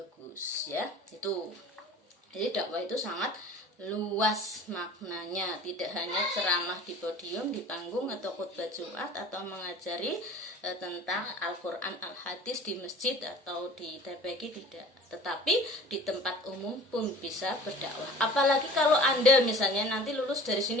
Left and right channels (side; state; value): both; normal; correlation 0.44